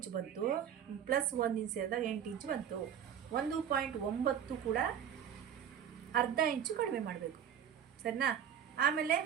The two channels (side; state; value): left; quieter; 8.8 dB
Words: ಬಂತು, ಪ್ಲಸ್ 1 ಇಂಚ್ ಸೇರಿದಾಗ 8 ಇಂಚು ಬಂತು. 1.9 ಕೂಡ ಅರ್ಧ ಇಂಚು ಕಡಿಮೆ ಮಾಡಬೇಕು. ಸರಿನಾ? ಆಮೇಲೆ